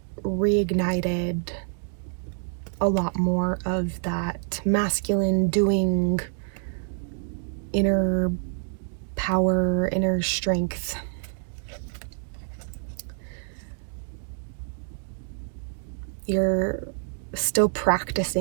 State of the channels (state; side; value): silent; left; digital silence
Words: reignited a lot more of that masculine doing, inner power, inner strength. You're still